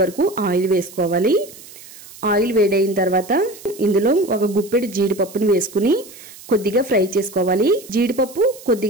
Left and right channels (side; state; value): right; noise; hiss, 19 dB below the sound